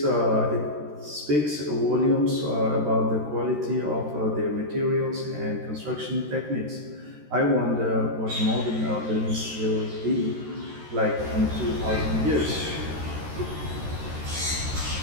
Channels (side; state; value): left; late; 13 ms